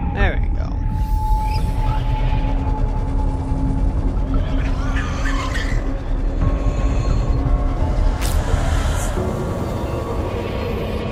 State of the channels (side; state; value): both; identical; correlation 1.00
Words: There we go.